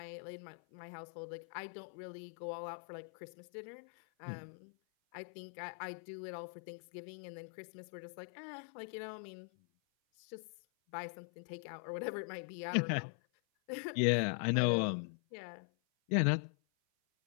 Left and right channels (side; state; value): right; silent; 50 dB below the other